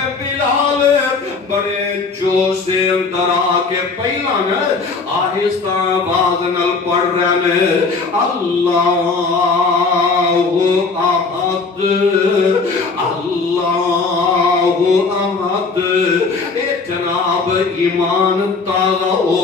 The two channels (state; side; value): quieter; right; 4.3 dB